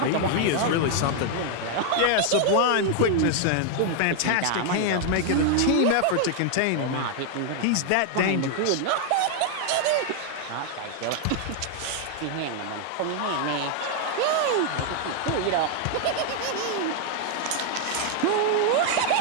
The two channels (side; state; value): both; different; correlation 0.00